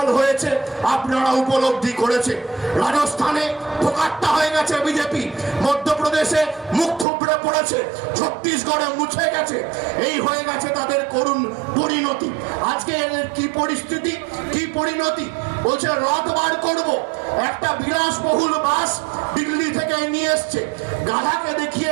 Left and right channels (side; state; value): left; drops out; at 7.1 s